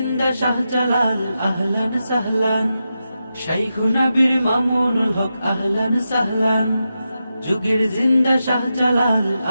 শাহজালাল আহলান সাহলান। শাইখুনা বীর মামুনুল হক আহলান সাহলান, যুগের জিন্দা শাহজালাল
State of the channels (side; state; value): both; inverted; correlation -0.88